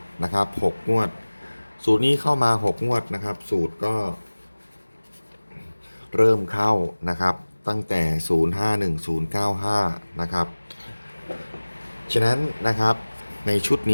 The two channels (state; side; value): inverted; both; correlation -1.00